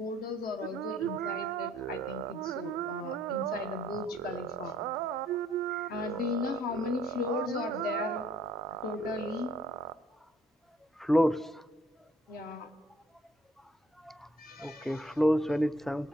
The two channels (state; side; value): normal; both; correlation 0.62